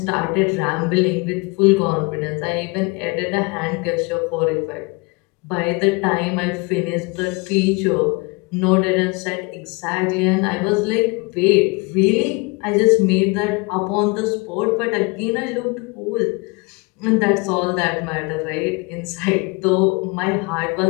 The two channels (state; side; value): quieter; right; 28.2 dB